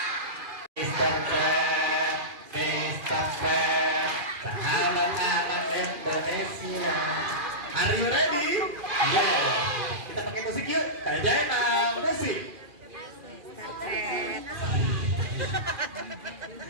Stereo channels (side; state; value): left; late; 2.4 ms